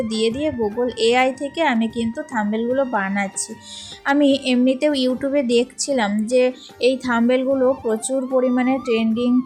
দিয়ে গুগল এআই থেকে আমি কিন্তু থাম্বনেলগুলো বানাচ্ছি। আমি এমনিতেও ইউটিউবে দেখছিলাম যে এই থাম্বনেলগুলো প্রচুর পরিমাণে ট্রেন্ডিং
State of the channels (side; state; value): both; identical; correlation 1.00